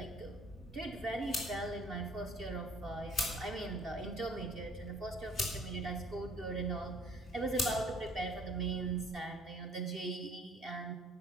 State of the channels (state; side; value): normal; both; correlation 0.56